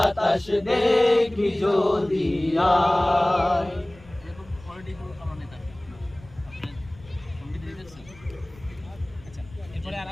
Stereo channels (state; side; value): noise; left; rumble, 23 dB below the sound